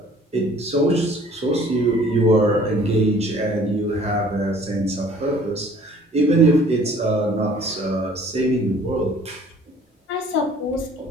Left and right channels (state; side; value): normal; both; correlation 0.54